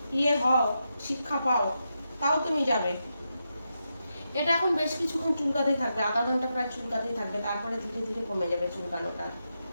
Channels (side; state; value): both; inverted; correlation -0.86